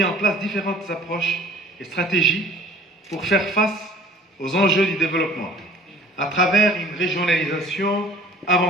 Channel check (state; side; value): normal; both; correlation 0.49